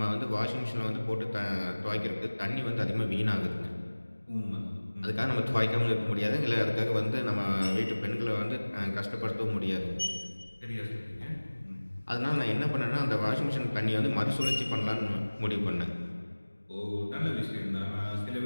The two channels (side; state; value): both; inverted; correlation -1.00